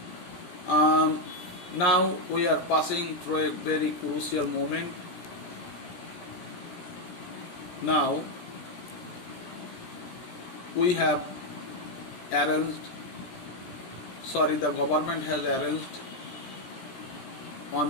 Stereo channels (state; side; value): late; right; 17 ms